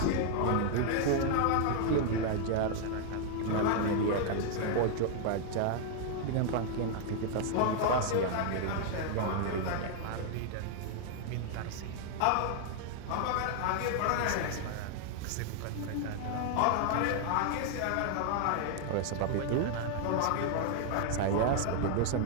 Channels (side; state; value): both; different; correlation 0.00